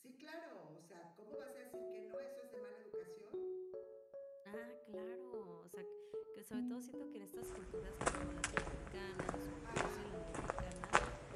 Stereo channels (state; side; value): identical; both; correlation 1.00